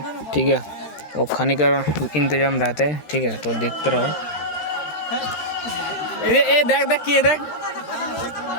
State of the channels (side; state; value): right; late; 13 ms